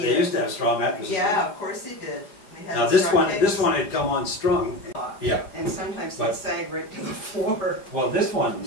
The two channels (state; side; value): late; right; 4.9 ms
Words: they idea. used to have straw mattresses. Yeah, of course they did. They had Now straw this pegs. one had come unstrung. Yeah. And sometimes But- they sag right to the floor. Well, this one,